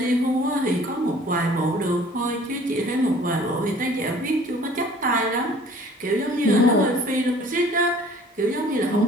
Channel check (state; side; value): normal; both; correlation 0.52